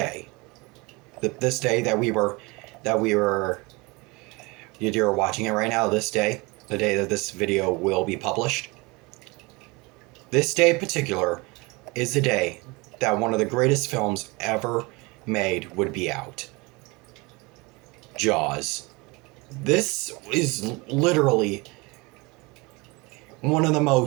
this day that you're watching it right now, this day, the day that this video will be published, this day in particular is the day that one of the greatest films ever made would be out. Jaws. This is literally one of the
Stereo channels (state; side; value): quieter; left; 25.7 dB